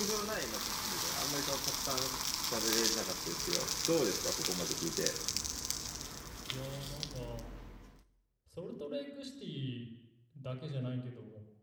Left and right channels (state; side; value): identical; both; correlation 1.00